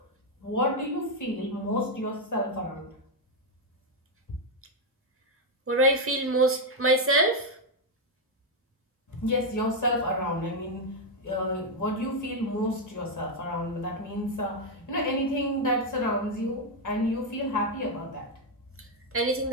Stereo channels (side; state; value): both; normal; correlation 0.02